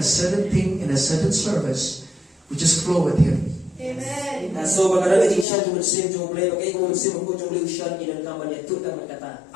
certain thing in a certain service, we just flow with Him. Amen.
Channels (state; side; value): drops out; right; at 5.5 s